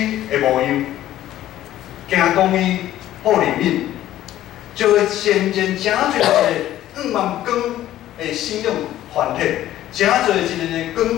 的模样。行公义、好灵敏，就会渐渐真侪个5万光的信仰团体，真侪一个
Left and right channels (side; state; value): right; quieter; 13.3 dB